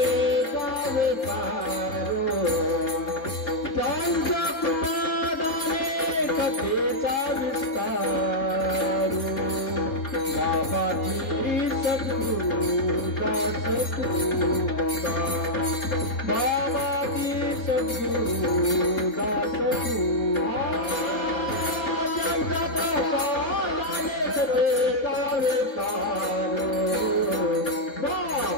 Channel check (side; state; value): right; late; 3.7 ms